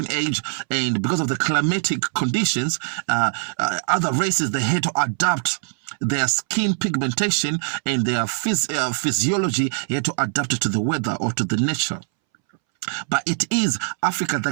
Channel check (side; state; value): left; silent; 64 dB below the other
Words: age and because of the climatic conditions, other races, they had to adapt their skin pigmentation and their physiology had to adapt to the weather or to the nature. But it is Africa